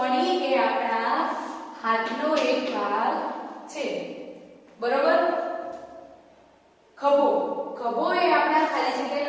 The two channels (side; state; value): both; identical; correlation 1.00